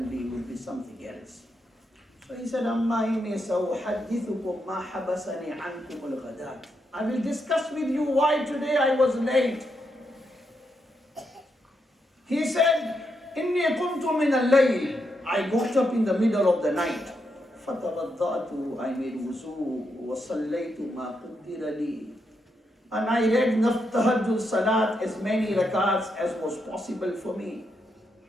be, it would be something else. So he said, Amma inni sawuhaddithukum ma habasani ankum al-ghadat. I will discuss with you why today I was late. He said, Inni qumtu min al-layl. I got up in the middle of the night. فَتَوَضَّأْتُ. I made wuzu. وَصَلَّيْتُ مَا قُدِّرَ لِي. And I read tahajjud salat, as many rakats as was possible for me.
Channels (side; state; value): both; normal; correlation 0.82